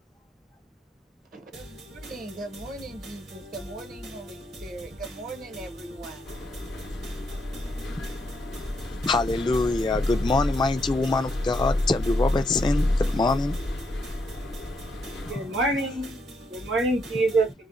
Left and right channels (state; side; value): normal; both; correlation 0.76